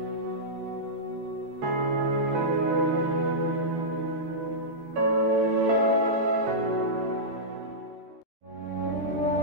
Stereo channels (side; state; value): left; late; 13 ms